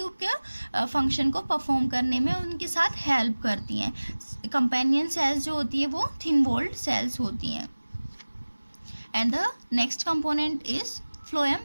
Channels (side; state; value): both; inverted; correlation -1.00